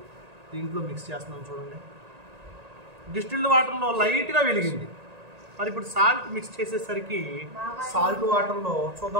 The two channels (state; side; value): late; left; 1.8 ms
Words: దీంట్లో మిక్స్ చేస్తున్నాం. చూడండి, డిస్టిల్డ్ వాటర్లో లైట్గా వెలిగింది. మరి ఇప్పుడు సాల్ట్ మిక్స్ చేసేసరికి సాల్ట్ వాటర్లో